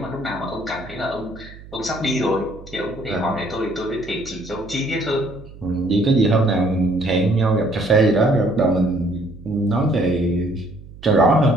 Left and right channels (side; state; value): right; noise; hum, 18 dB below the sound